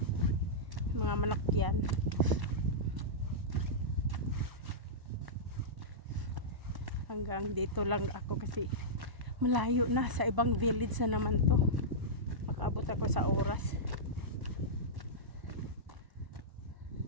Mga manok yan. Hanggang dito lang ako kasi malayo na. Sa ibang village na naman to. Makaabot ako sa oras.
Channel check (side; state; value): left; late; 1.0 ms